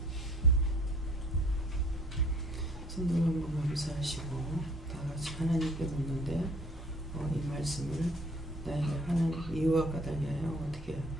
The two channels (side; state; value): both; normal; correlation 0.55